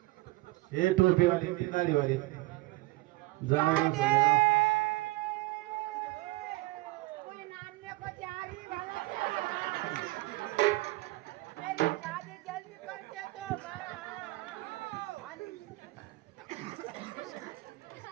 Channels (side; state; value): left; quieter; 21.2 dB